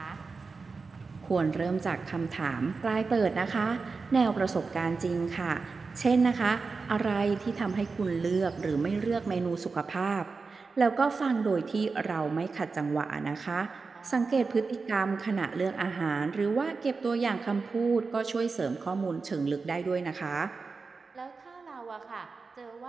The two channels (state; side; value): quieter; left; 4.4 dB